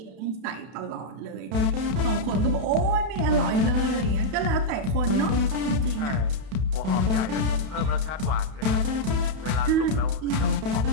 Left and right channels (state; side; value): late; left; 31 ms